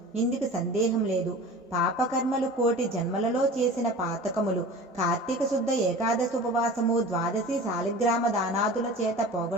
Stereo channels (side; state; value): both; normal; correlation 0.38